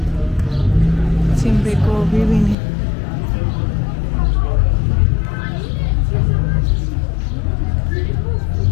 تیم بگو ببینیم.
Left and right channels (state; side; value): drops out; right; at 2.6 s